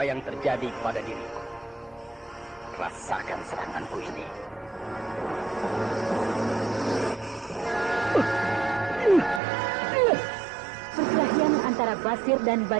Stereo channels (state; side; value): drops out; left; at 9.4 s